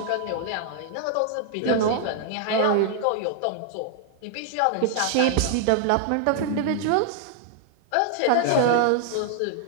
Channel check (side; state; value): both; different; correlation -0.01